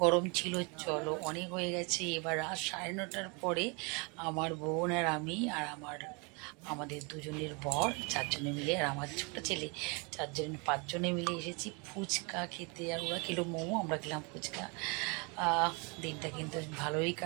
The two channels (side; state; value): left; quieter; 31.4 dB